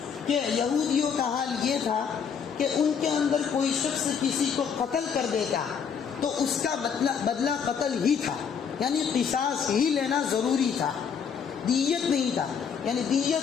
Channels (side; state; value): right; quieter; 6.9 dB